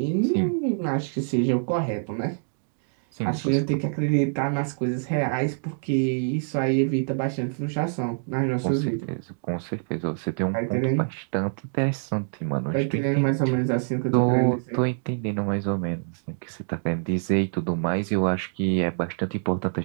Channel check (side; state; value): left; silent; digital silence